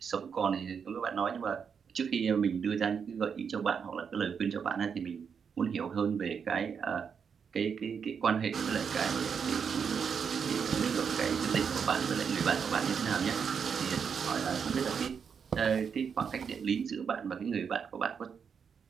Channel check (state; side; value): quieter; left; 6.7 dB